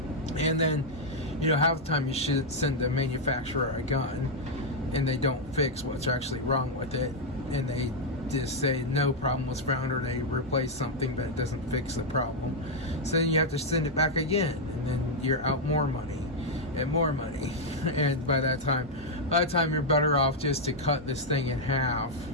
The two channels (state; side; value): normal; both; correlation -0.02